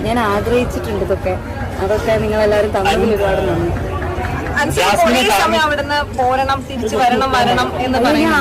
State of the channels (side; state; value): both; identical; correlation 1.00